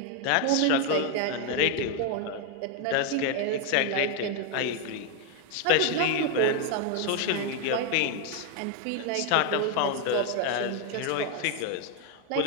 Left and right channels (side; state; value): both; different; correlation 0.01